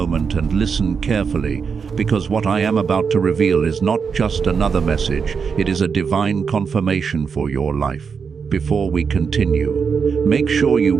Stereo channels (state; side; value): quieter; left; 5.9 dB